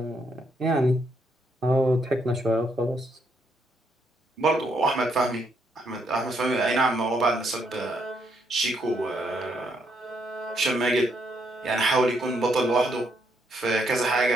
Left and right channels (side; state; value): both; normal; correlation 0.74